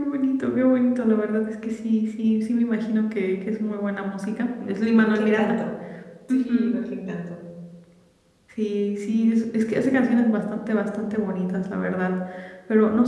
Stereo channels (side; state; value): both; identical; correlation 1.00